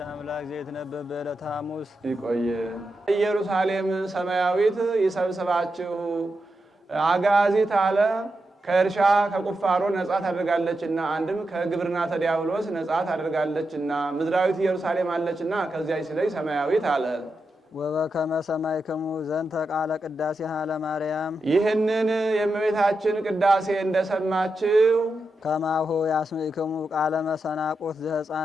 አምላክ ዘይትነበብ በዕለተ ሐሙስ። ይቆየ ኢየሩሳሌም ሰማያዊት ይሰብስባችሁ አጋዚት አለ ከእርሻ ከቁፋሮ ነጻ ታደርጋለችና፣ አንድም ከግብርና ተዲያብሎስ ነጻ ታደርጋለችና። ምድራዊት ኢየሩሳሌም አለችና ከዚያች ሲለይ ሰማያዊት አለ። ወበከመ ሰማዕክሙ ዘንተ ቃለ ቅዳሴሃ ለማርያም ይህንን የእመቤታችን ቅዳሴ እንደሰማችሁ ከማሁ ያስምዕክሙ ቃለ መሰናቆት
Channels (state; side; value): normal; both; correlation 0.87